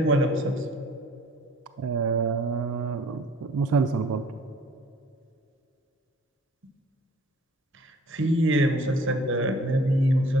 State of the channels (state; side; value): normal; both; correlation 0.53